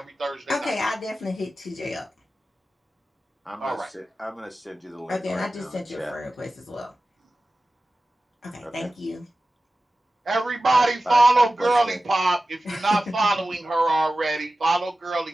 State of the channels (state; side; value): normal; both; correlation 0.95